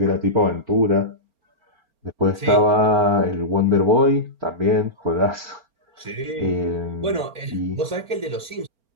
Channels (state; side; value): late; left; 4.4 ms